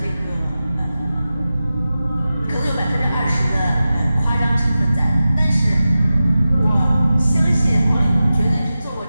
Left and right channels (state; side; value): inverted; both; correlation -0.94